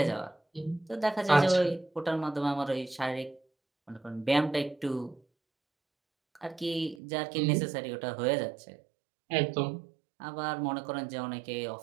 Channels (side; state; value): left; drops out; at 7.0 s